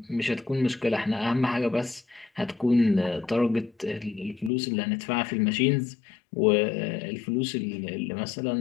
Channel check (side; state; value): right; drops out; at 4.5 s